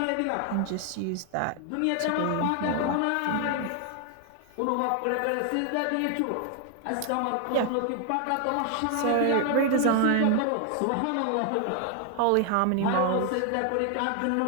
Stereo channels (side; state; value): both; different; correlation 0.00